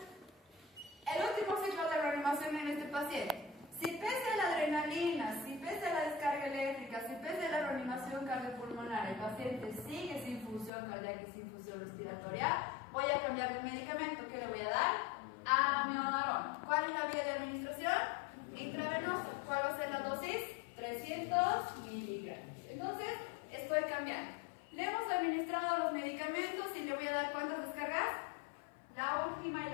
El último ciclo de reanimación en este paciente. Si pese a la adrenalina, si pese a la descarga eléctrica, si pese a la reanimación cardiopulmonar, el paciente sigue sin función cardíaca y sin función respiratoria, voy a cambiar de medicamento. ¿Qué le voy a dar? Amiodarona. ¿Cuál es la vía de administración? Intravenosa. ¿Cuál va a ser la dosis? 300 miligramos. Entonces, estoy cambiando. Le hemos administrado los medicamentos y le voy a dar ¿cuántas descargas? La última y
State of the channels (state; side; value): drops out; right; at 10.7 s